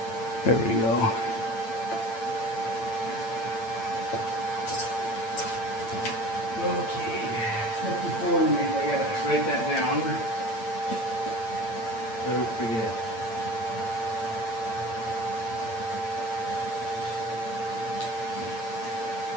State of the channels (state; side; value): late; right; 8.9 ms